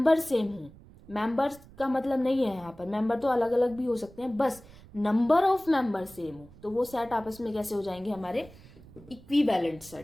सेम हो, मेंबर्स का मतलब नहीं है यहाँ पर, मेंबर तो अलग अलग भी हो सकते हैं, बस नंबर ऑफ मेंबर सेम हो तो वो सेट आपस में कैसे हो जाएंगे? हमारे इक्विवेलेंट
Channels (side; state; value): right; noise; rumble, 22 dB below the sound